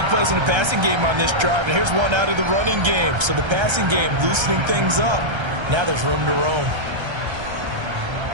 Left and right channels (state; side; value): late; left; 1.3 ms